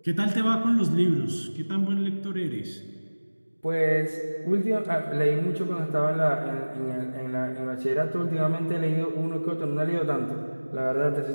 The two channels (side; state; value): both; inverted; correlation -1.00